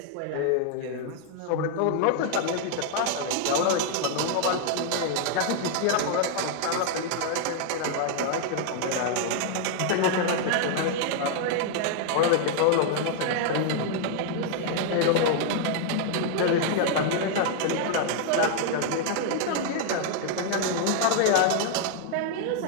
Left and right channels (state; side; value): different; both; correlation 0.00